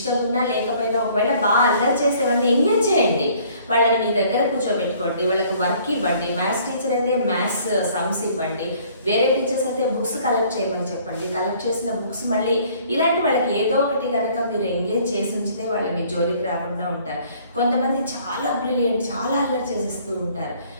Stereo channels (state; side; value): inverted; both; correlation -0.57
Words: ఉన్నా లేకపోయినా ఒకవేళ బాగా అల్లరి చేసేవాళ్ళని ఎంగేజ్ చేయండి, వాళ్ళని మీ దగ్గర కూర్చోబెట్టుకోండి, వాళ్ళకి వర్క్ ఇవ్వండి. మ్యాథ్స్ టీచర్ అయితే మ్యాథ్స్ సమ్స్ ఇవ్వండి, వేరే టీచర్స్ అయితే బుక్స్ కలెక్ట్ చేయమని చెప్పండి. కలెక్ట్ చేసిన బుక్స్ మళ్ళీ ఇలాంటి వాళ్ళకి ఏదో ఒకటి కనుక మీరు ఎంగేజ్ చేసి ఉంచితే వాళ్ళు మీ జోలికి రాకుండా ఉంటారు. కొంతమంది చాలా బ్రిలియంట్, చాలా అల్లరి చేసేస్తూ ఉంటారు.